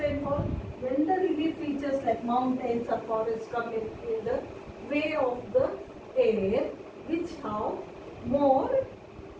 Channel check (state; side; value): identical; both; correlation 1.00